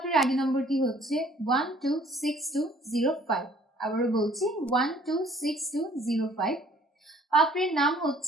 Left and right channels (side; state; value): both; normal; correlation 0.57